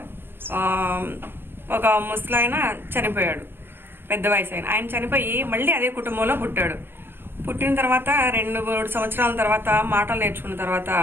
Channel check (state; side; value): late; left; 0.10 ms